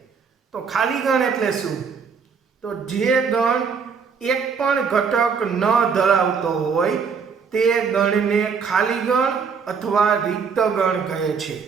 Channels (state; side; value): quieter; left; 5.9 dB